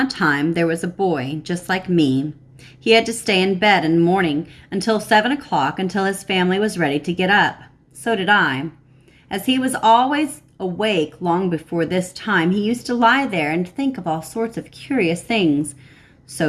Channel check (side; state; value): both; identical; correlation 1.00